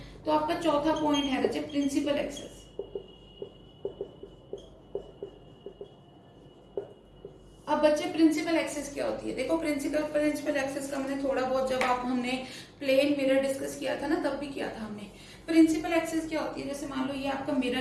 तो आपका चौथा पॉइंट है बच्चे प्रिंसिपल एक्सिस। अब बच्चे प्रिंसिपल एक्सिस क्या होती है, देखो प्रिंसिपल एक्सिस का मैंने थोड़ा बहुत जब हमने प्लेन मिरर डिस्कस किया था ना, तब भी किया था हमने। प्रिंसिपल एक्सिस क्या होती है, जैसे मान लो ये आपका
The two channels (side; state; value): both; identical; correlation 1.00